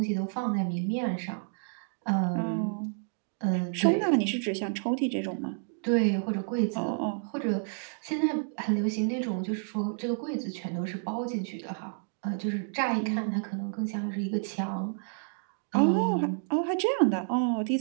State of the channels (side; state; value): left; silent; digital silence